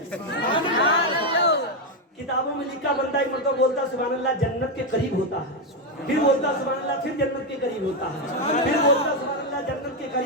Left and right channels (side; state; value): both; normal; correlation 0.05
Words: किताबों में लिखा बंदा एक मरतबा बोलता सुभान अल्लाह जन्नत के करीब होता है, फिर बोलता सुभान अल्लाह फिर जन्नत के करीब होता है, फिर बोलता सुभान अल्लाह जन्नत के